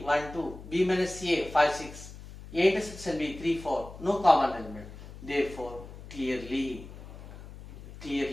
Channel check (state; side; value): noise; left; hum, 15 dB below the sound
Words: 1, 2, B minus A 5, 6, A intersection B 3, 4, no common element. Therefore, clearly